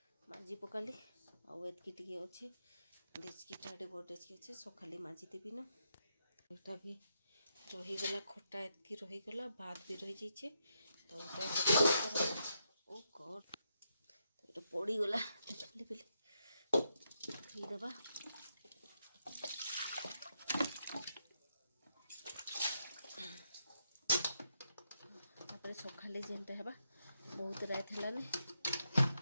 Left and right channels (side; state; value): both; inverted; correlation -0.82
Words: माजी पकाली आतकी टे अच्छे डेचकीटा बड़ डेचकी अच्छे सकाली माजी देवी न यहाँ भी रहीगला खट्टा एतकी रहीगला भात भी रही जाइए तो ओ गॉड तो ये पड़ीगला खाली पीले देवा सकाले जेनटा है बहुत रात है